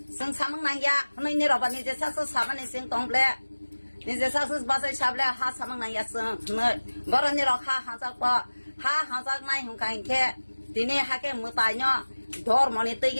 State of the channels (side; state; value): both; inverted; correlation -1.00